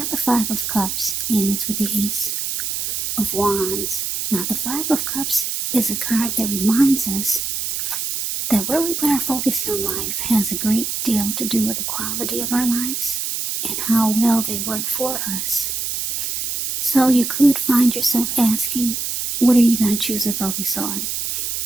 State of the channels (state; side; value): noise; right; hiss, 2 dB below the sound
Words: the Five of Cups, and it's with the Ace of Wands. Now, the Five of Cups is a card that reminds us that where we put our focus in life has a great deal to do with the quality of our lives and how well they work for us. So you could find yourself asking, what are you going to choose to focus on?